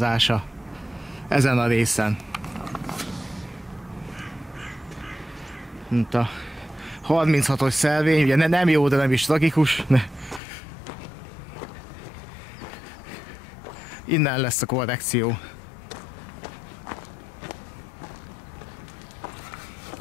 ezen a részen. Mint a 36-os szelvény, ugye nem jó, de nem is tragikus. Innen lesz a korrekció.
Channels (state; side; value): drops out; right; at 10.4 s